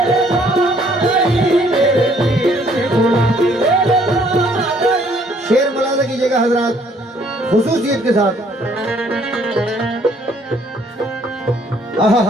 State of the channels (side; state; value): both; normal; correlation 0.63